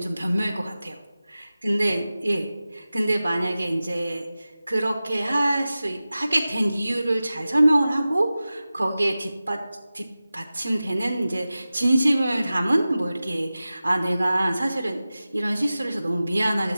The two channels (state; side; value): inverted; both; correlation -0.96